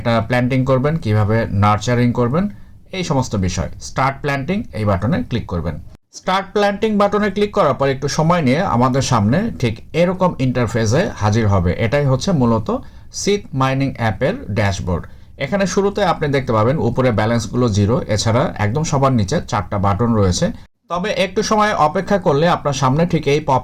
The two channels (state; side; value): identical; both; correlation 1.00